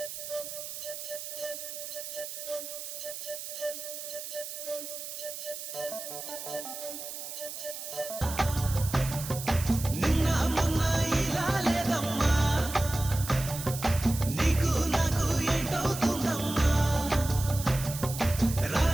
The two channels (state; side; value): noise; right; hiss, 8 dB below the sound